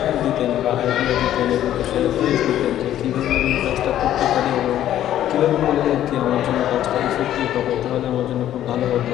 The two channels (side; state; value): right; quieter; 12.0 dB